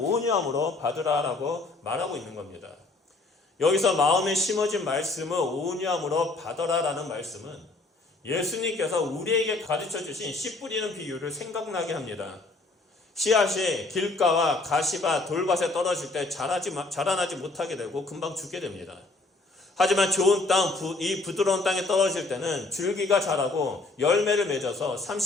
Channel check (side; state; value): right; quieter; 3.2 dB